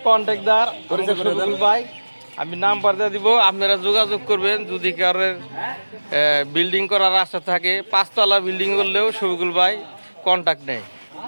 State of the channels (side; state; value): both; inverted; correlation -1.00